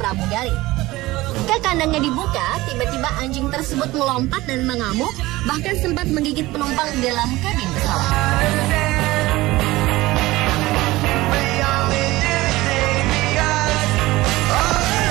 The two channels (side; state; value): left; quieter; 18.9 dB